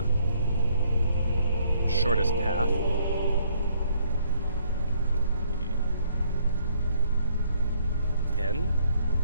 shortest path. 10,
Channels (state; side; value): inverted; both; correlation -0.66